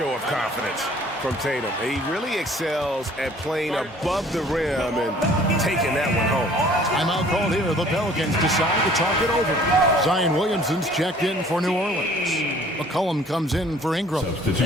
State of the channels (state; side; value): normal; both; correlation 0.54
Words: of confidence from Tatum? He really excels at playing above the rim and taking that one home. Timeout called here. The Pelicans decide to talk it over. Zion Williamson's checked in for New Orleans. McCollum comes in for Ingram.